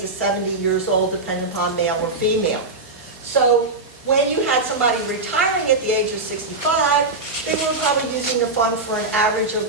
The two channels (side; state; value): left; quieter; 3.3 dB